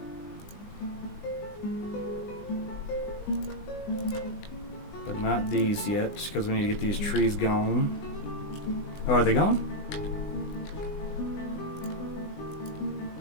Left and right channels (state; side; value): late; right; 20 ms